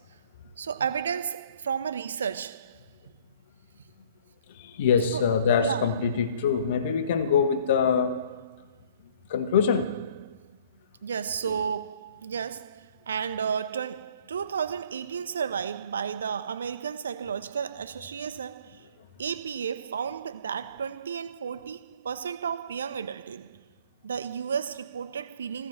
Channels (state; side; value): inverted; both; correlation -0.56